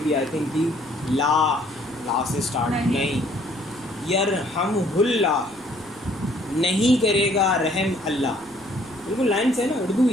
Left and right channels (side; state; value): right; noise; rumble, 25 dB below the sound